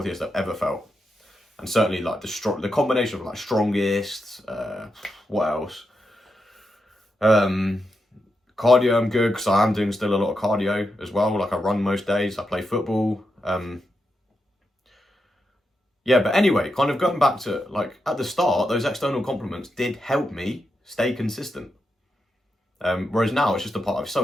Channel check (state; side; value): normal; both; correlation 0.86